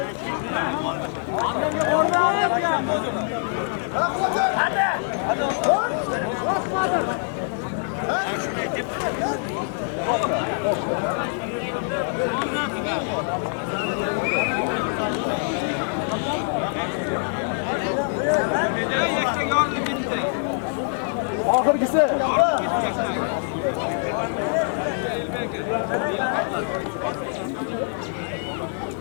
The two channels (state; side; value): silent; right; 62 dB below the other